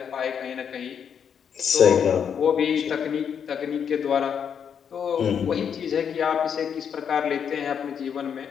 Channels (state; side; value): quieter; right; 7.6 dB